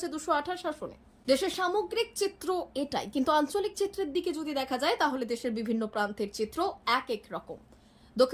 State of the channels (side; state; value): both; identical; correlation 1.00